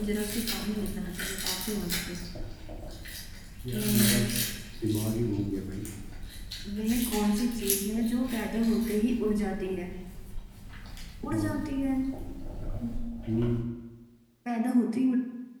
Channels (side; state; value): both; identical; correlation 1.00